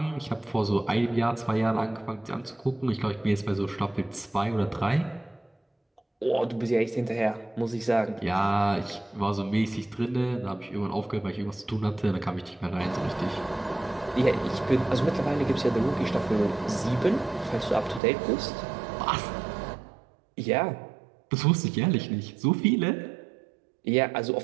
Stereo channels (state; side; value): drops out; left; at 18.0 s